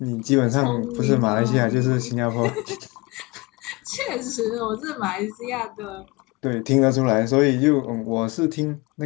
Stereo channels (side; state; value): right; quieter; 24.7 dB